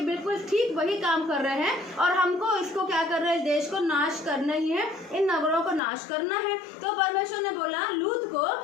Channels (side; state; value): right; drops out; at 5.8 s